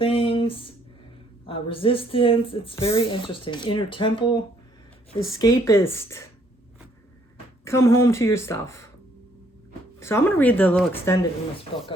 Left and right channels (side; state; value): both; normal; correlation 0.66